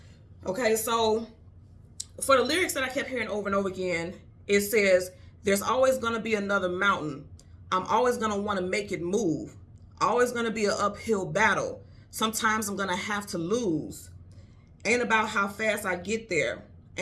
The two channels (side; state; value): both; identical; correlation 1.00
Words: Okay, so for the lyrics that I kept hearing over and over again, it says, there's always going to be another mountain. I'm always going to want to make it move. Always going to be an uphill battle. Sometimes I'm going to have to lose. Ain't about how fast I get there.